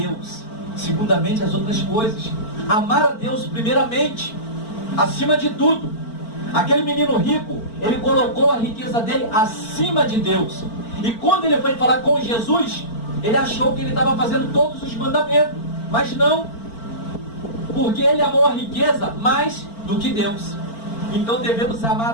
Segundamente as outras coisas. Amar a Deus primeiramente. Acima de tudo. Aquele menino rico, ele colocou a riqueza dele acima de Deus. E quando ele foi falar com Jesus, ele achou que ele estava fazendo todos os mandamentos. Mas não. Porque ele amou a riqueza mais do que Deus. Então devemos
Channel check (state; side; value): late; right; 4.4 ms